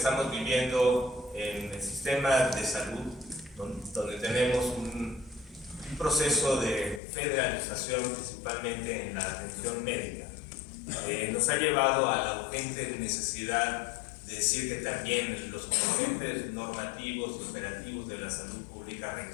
viviendo en el sistema de salud, donde tenemos un proceso de federalización principalmente en la atención médica, nos ha llevado a la urgente necesidad de decir que también los componentes normativos y operativos de la salud pública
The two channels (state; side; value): drops out; right; at 7.0 s